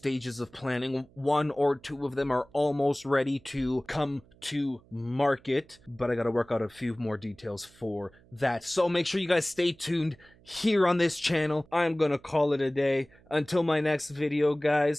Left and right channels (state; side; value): noise; right; hum, 28 dB below the sound